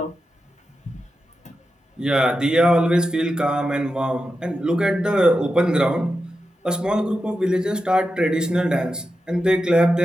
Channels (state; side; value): normal; both; correlation 0.90